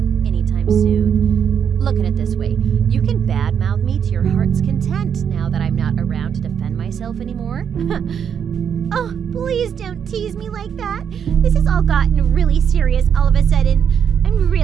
anytime soon. Look at it this way. You can badmouth me to your heart's content now that I'm not around to defend myself anymore. Oh, please don't tease me like that. This has all gotten really serious all of a sudden. I'm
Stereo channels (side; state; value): left; quieter; 7.8 dB